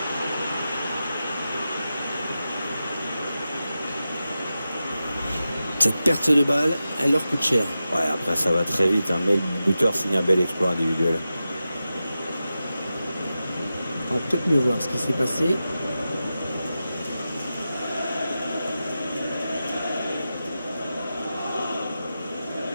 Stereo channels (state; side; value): inverted; both; correlation -0.92